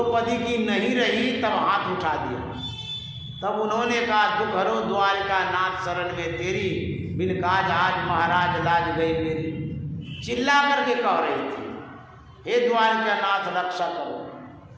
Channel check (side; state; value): both; identical; correlation 1.00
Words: की नहीं रही, तब हाथ उठा दिया। तब उन्होंने कहा दुख हरो द्वारिका नाथ शरण में तेरी, बिन काज आज महाराज लाज गई मेरी। चिल्ला करके कह रही थी, हे द्वारिका नाथ रक्षा करो,